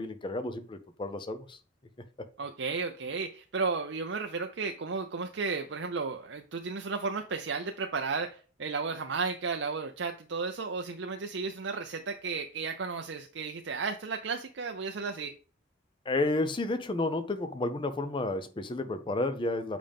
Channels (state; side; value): normal; both; correlation 0.10